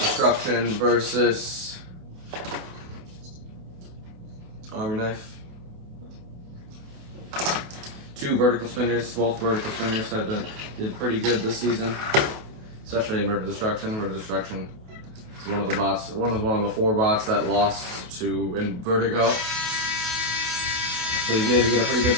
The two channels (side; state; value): left; late; 28 ms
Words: versus Army Knife. 2 vertical spinners. Both vertical spinners did pretty good this season, especially Inverted Destruction. Inverted Destruction is one of the 4 bots that lost to Vertigo. So you need to get a pretty good